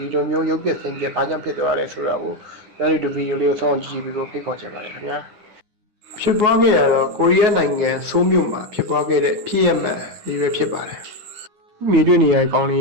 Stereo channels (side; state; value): left; late; 9.5 ms